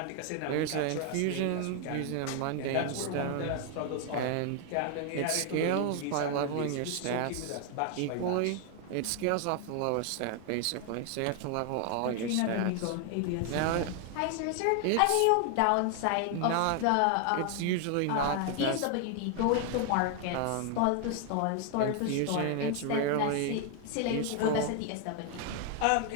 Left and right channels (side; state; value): both; different; correlation 0.00